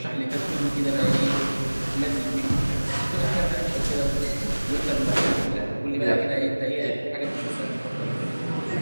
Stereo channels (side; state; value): both; inverted; correlation -1.00